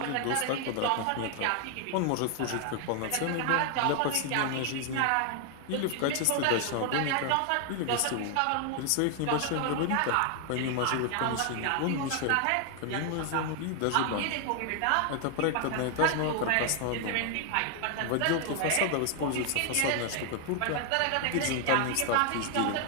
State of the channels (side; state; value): both; different; correlation 0.00